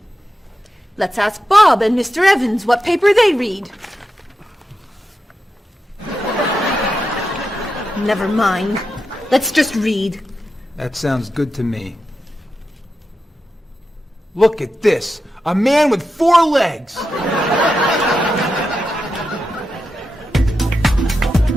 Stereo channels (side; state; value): both; normal; correlation 0.88